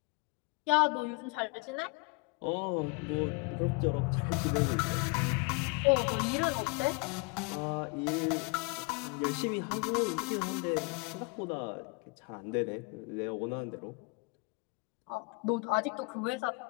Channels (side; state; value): right; quieter; 30.4 dB